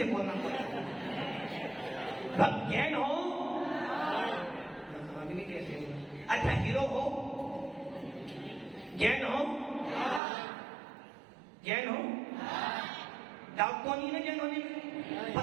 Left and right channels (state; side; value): drops out; left; at 10.2 s